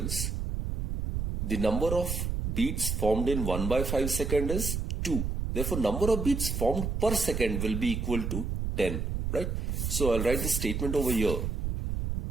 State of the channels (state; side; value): noise; right; rumble, 2 dB below the sound